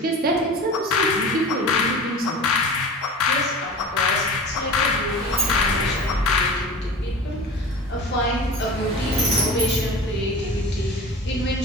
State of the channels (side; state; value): both; normal; correlation 0.36